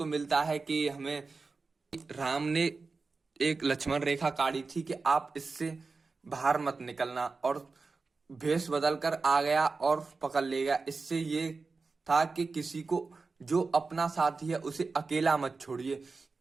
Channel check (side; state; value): left; quieter; 4.2 dB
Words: मिलता है कि हमें राम ने एक लक्ष्मण रेखा काटी थी कि आप इससे बाहर मत निकलना, और भेष बदल कर आ गया और पकड़ ले गया। इससे ये था कि किसी को, जो अपना साथी है, उसे अकेला मत छोड़िए।